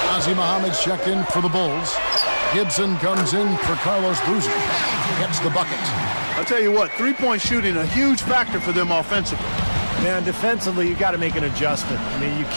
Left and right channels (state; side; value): inverted; both; correlation -1.00